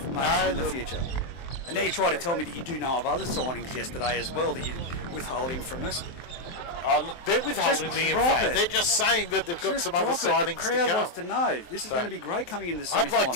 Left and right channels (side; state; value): right; late; 23 ms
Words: in the future. And now you try to tell me that you do know of other signings yesterday as well that you're withholding from us. Oh, look, they're withholding Just the drop info. it. They're just saying that they've got Just some other drop it. signings The crowd to wants come. to know. This is going to be great coming into the I'd semi-final. like